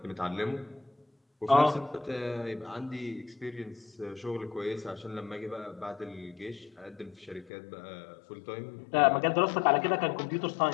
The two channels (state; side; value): drops out; right; at 7.5 s